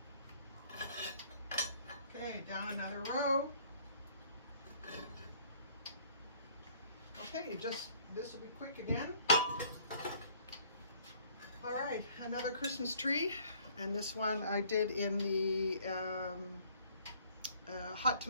Okay, down another row. Okay, this will be quick again. All right, another Christmas tree. And this one I did in the hot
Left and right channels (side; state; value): both; inverted; correlation -0.59